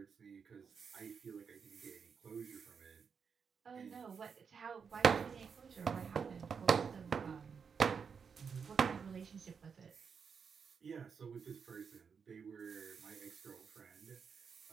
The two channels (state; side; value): quieter; left; 6.2 dB